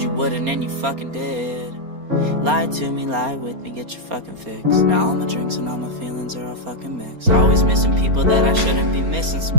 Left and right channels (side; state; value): left; late; 4.3 ms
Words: you wouldn't and you fucking did. Lie to me, lie with me, get your fucking fix. Now all my drinks and all my feelings are all fucking mixed. Always missing people that I shouldn't be missing.